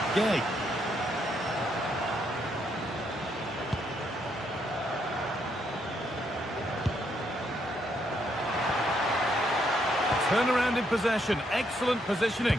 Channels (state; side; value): normal; both; correlation 0.75